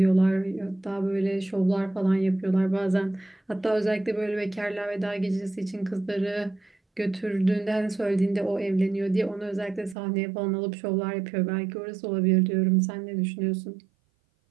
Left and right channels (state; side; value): drops out; left; at 10.0 s